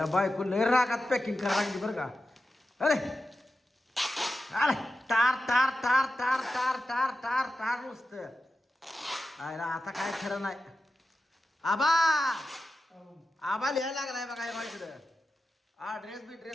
बायको लय रागात पॅकिंग करायला लागली बरं का. अरे अरे टार टार टार टार टार टार टार टार नुसतं. आयला आता काय खरं नाही. आबा आबा लिहायला लागलाय बघा या बाईकडं. हा ड्रेस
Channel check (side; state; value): both; normal; correlation 0.92